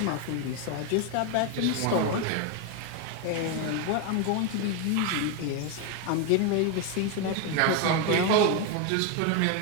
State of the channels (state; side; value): different; both; correlation 0.01